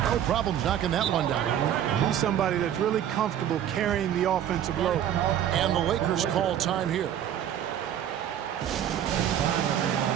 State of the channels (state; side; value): quieter; left; 10.3 dB